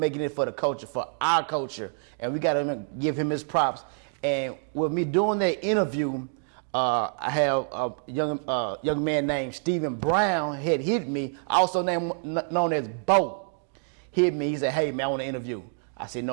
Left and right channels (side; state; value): left; silent; 60 dB below the other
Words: it for the culture, for our culture, and we got to give him his props. And with me doing that interview, I have a young man named Stephen Brown had hit me, also known as Bo. Hit me. He said, "Hey man, I want to interview." I said,